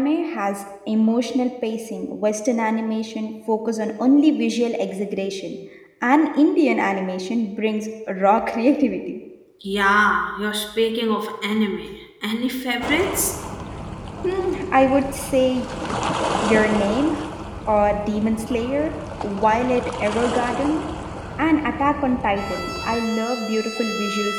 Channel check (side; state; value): both; identical; correlation 1.00